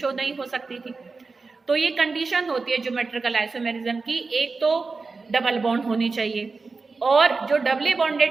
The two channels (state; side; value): quieter; left; 4.2 dB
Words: नहीं हो सकती थी। तो ये कंडीशन होती है ज्योमेट्रिकल आइसोमेरिज्म की, एक तो डबल बॉन्ड होनी चाहिए और जो डबली